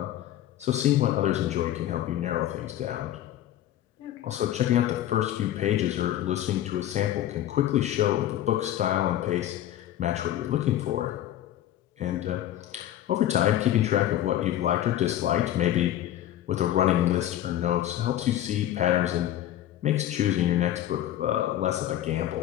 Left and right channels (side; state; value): right; quieter; 12.5 dB